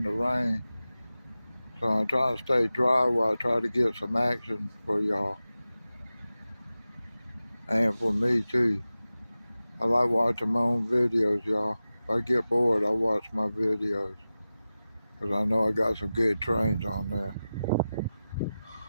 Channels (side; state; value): both; inverted; correlation -0.95